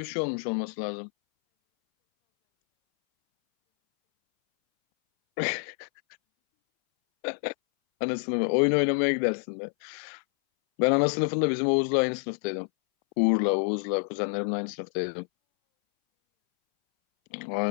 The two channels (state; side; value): silent; right; 60 dB below the other